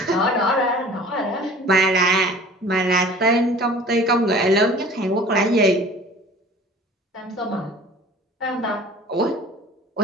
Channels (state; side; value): normal; both; correlation 0.46